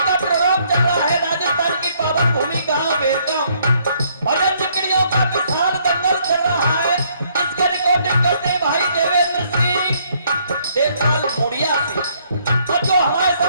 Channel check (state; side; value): inverted; both; correlation -0.67